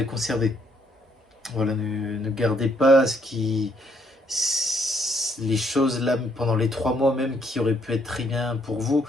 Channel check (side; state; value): both; normal; correlation 0.70